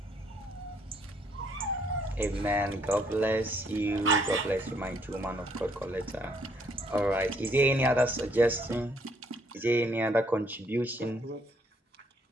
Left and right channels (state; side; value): normal; both; correlation 0.68